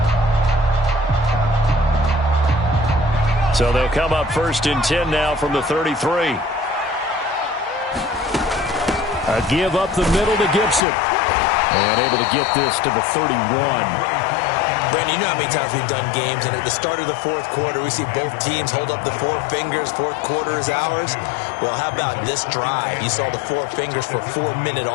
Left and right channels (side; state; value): right; drops out; at 10.9 s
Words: So they'll come up 1st and 10 now from the 33. A give up the middle to Gibson. And able to get this to the 31. Brandon, you know how many times we've done games, and at the start of the 4th quarter, we see both teams hold up the 4 fingers. 4th quarter is ours. Well, how about this drive? You saw the 4 fingers for 4-minute